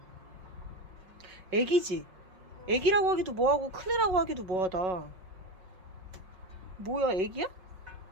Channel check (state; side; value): late; left; 5.4 ms